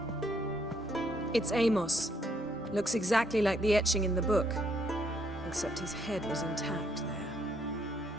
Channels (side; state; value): both; normal; correlation 0.71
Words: It's Amos. Looks exactly like the etching in the book. Except his head was intact there.